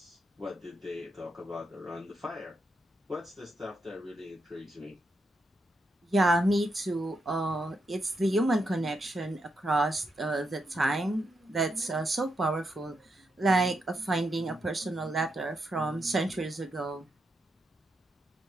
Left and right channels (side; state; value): both; normal; correlation 0.82